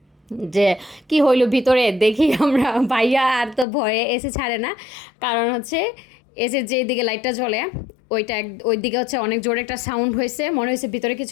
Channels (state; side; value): drops out; right; at 3.7 s